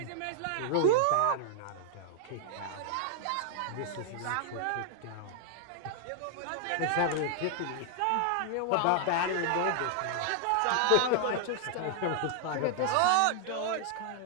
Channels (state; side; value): different; both; correlation -0.01